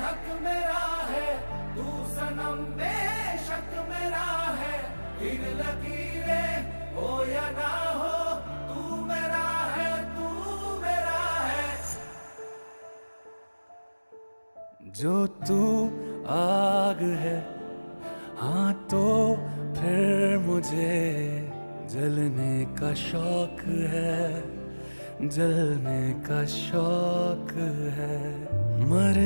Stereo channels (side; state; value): both; inverted; correlation -1.00